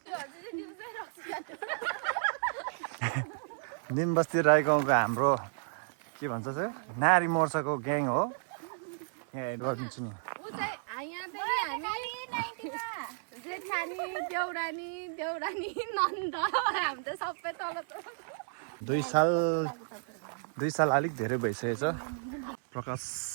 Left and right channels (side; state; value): left; silent; 56 dB below the other